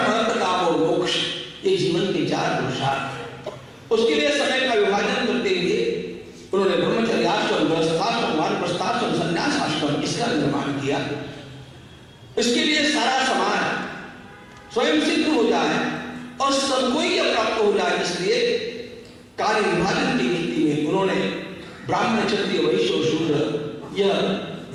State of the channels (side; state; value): both; identical; correlation 1.00